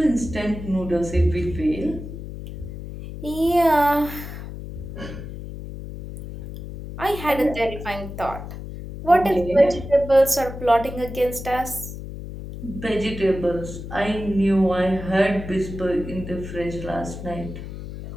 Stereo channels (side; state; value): left; noise; hum, 10 dB below the sound